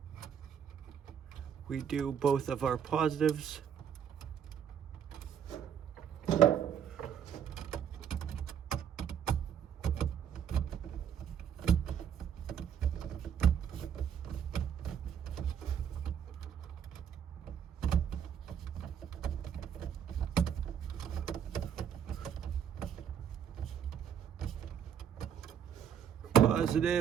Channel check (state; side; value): quieter; left; 8.4 dB